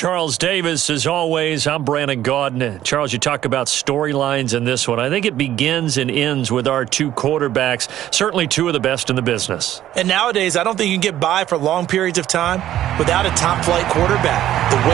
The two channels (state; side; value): quieter; left; 12.6 dB